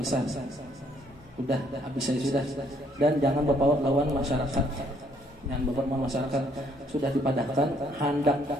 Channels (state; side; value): normal; both; correlation 0.66